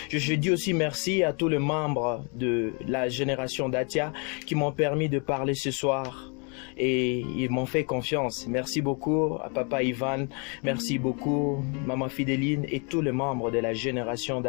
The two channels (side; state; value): right; quieter; 35.7 dB